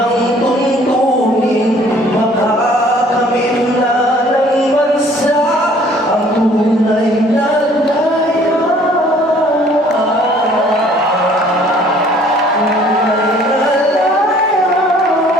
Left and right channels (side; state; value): both; normal; correlation 0.57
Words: tuntunin, makakamit na ng bansa ang tunay na